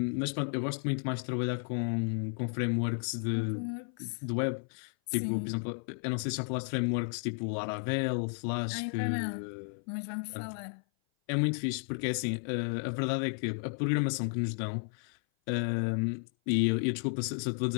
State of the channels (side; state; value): right; silent; 55 dB below the other